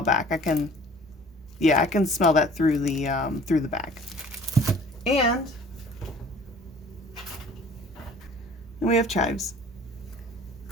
back. I can smell that through the bag. And we have chives.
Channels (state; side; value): normal; both; correlation 0.49